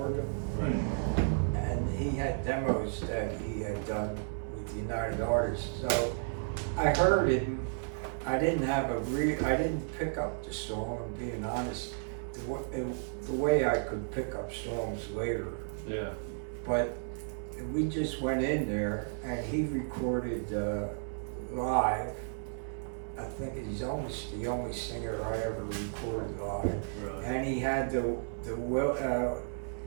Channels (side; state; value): left; silent; 56 dB below the other